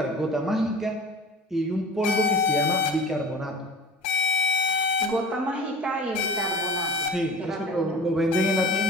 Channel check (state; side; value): normal; both; correlation 0.39